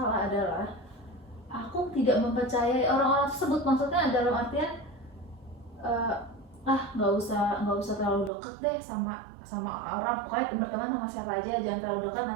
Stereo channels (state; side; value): drops out; left; at 8.3 s